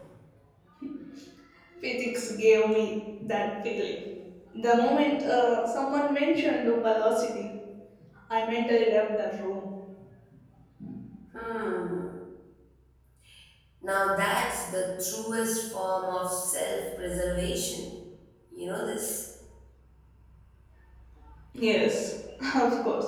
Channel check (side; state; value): both; identical; correlation 1.00